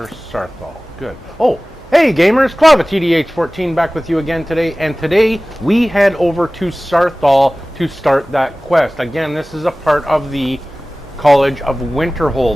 Sarthal. Good. Oh, hey gamers, Clava TDH14 back with you again today, and today we head over to Sarthal to start that quest. Again, this is a part of the College of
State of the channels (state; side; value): normal; both; correlation 0.98